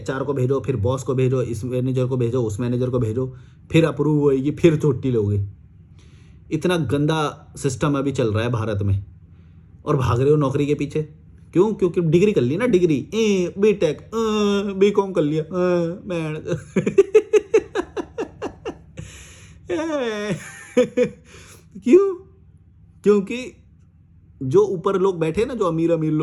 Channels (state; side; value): identical; both; correlation 1.00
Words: को भेजो, फिर बॉस को भेजो, इस मैनेजर को भेजो, उस मैनेजर को भेजो, फिर अप्रूव होएगी, फिर छुट्टी लोगे। इतना गंदा सिस्टम अभी चल रहा है भारत में, और भाग रहे हो नौकरी के पीछे। क्यों? क्योंकि डिग्री कर ली ना, डिग्री बीटेक बीकॉम कर लिया मैं क्यों? क्योंकि जो ऊपर लोग बैठे ना, जो अमीर